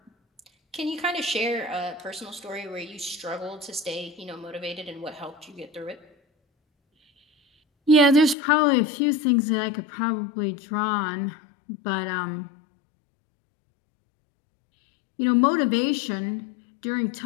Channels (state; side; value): drops out; right; at 8.3 s